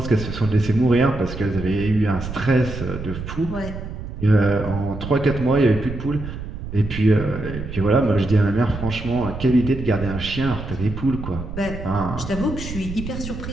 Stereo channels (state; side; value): noise; right; rumble, 8 dB below the sound